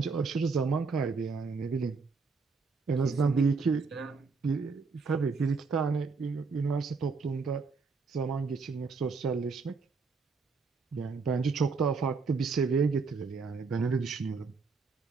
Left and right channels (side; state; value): left; quieter; 4.7 dB